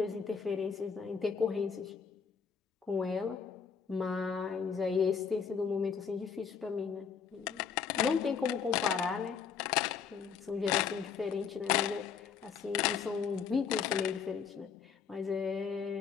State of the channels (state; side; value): quieter; right; 6.5 dB